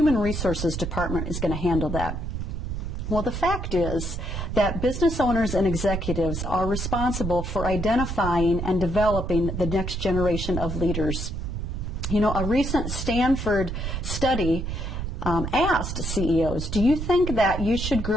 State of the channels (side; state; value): right; noise; rumble, 4 dB below the sound